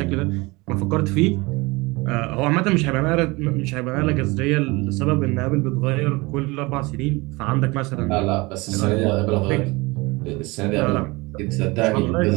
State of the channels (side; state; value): left; quieter; 24.0 dB